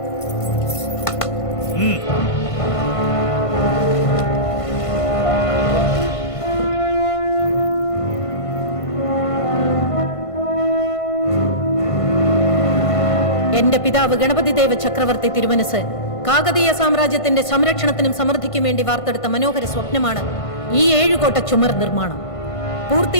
എന്റെ പിതാവ് ഗണപതിദേവ ചക്രവർത്തി തിരുമനസ് കാകതീയ സാമ്രാജ്യത്തിന്റെ സംരക്ഷണത്തിനും സമൃദ്ധിക്കും വേണ്ടി വാർത്തെടുത്ത മനോഹര സ്വപ്നമാണ് ഈ 7 കോട്ട ചുമർ നിർമ്മാണം.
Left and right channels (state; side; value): late; right; 1.5 ms